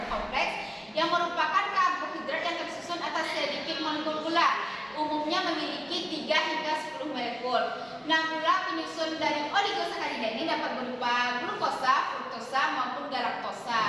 kompleks yang merupakan karbohidrat yang tersusun atas sedikit molekul gula, umumnya memiliki 3 hingga 10 molekul. Nah, gula penyusun dari oligosakarida ini dapat berupa glukosa, fruktosa maupun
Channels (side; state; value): both; identical; correlation 1.00